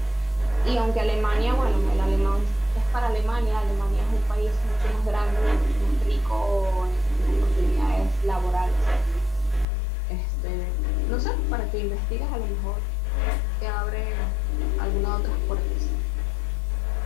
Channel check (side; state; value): right; drops out; at 9.7 s